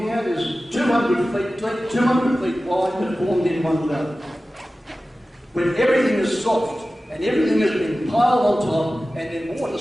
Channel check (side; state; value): both; normal; correlation 0.95